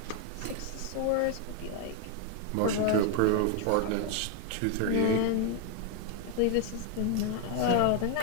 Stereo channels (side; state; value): both; different; correlation 0.01